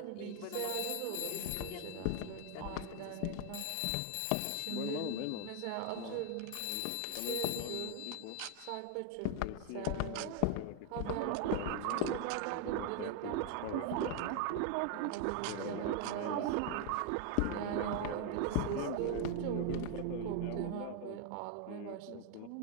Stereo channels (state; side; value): different; both; correlation 0.00